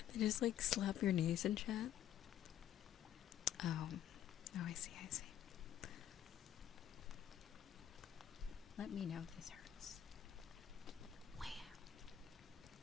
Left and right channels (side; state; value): right; quieter; 10.9 dB